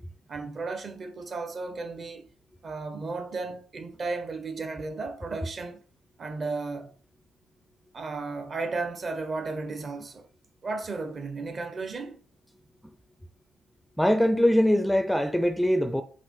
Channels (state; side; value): normal; both; correlation 0.94